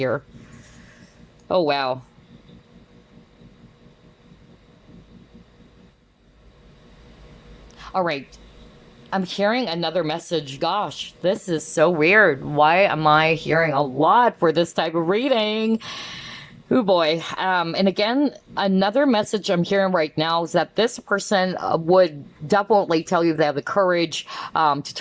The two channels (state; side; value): identical; both; correlation 1.00